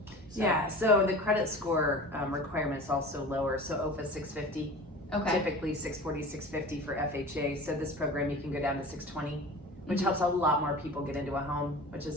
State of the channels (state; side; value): normal; both; correlation 0.37